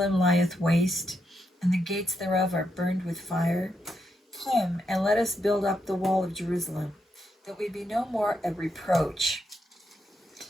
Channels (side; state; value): both; normal; correlation 0.81